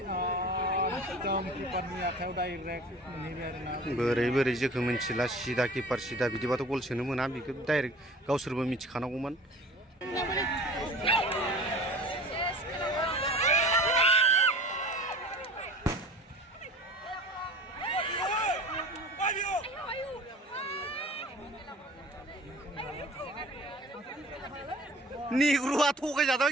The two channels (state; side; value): normal; both; correlation 0.42